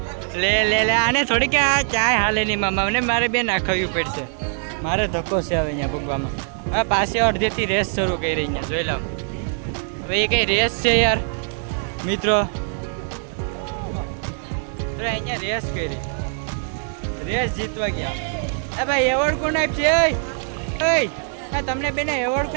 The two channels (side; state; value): left; silent; 61 dB below the other